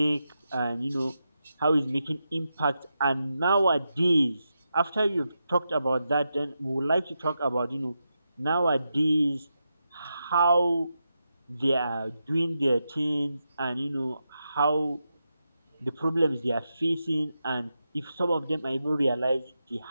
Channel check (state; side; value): inverted; both; correlation -0.87